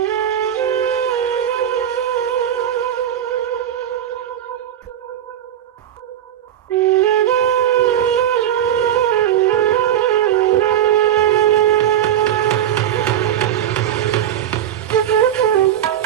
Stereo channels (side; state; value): left; quieter; 10.5 dB